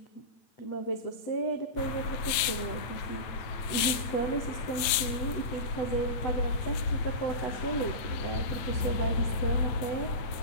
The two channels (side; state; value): right; late; 9.1 ms